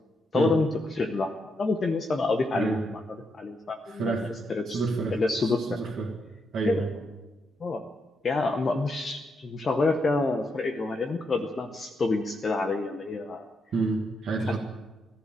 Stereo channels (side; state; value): both; normal; correlation 0.81